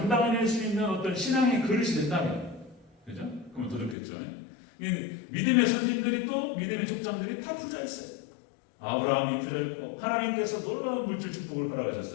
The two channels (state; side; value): drops out; right; at 4.0 s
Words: 수 있는 어떤 신앙의 그릇이 된다면, 그죠? 그러면 더 좋겠죠. 믿음의 선진들이 또 믿음의 족장들이 다 부자였어요. 아브라함이 부자였고 하나님께서 놀라운 물질 축복을